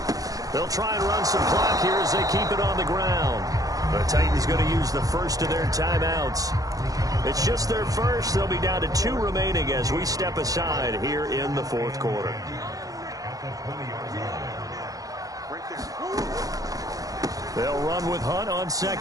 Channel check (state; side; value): late; left; 0.17 ms